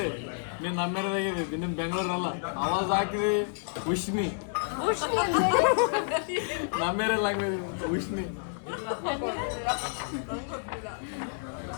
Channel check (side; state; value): right; silent; digital silence